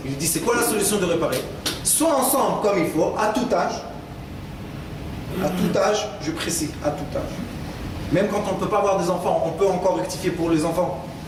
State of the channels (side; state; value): both; identical; correlation 1.00